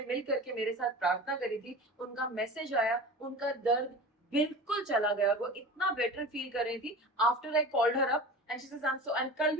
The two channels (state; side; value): normal; both; correlation 0.34